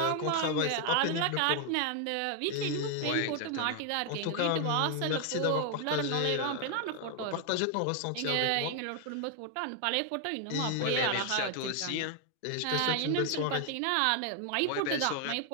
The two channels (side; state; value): both; different; correlation 0.00